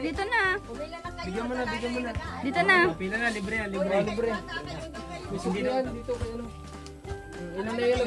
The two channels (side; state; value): both; identical; correlation 1.00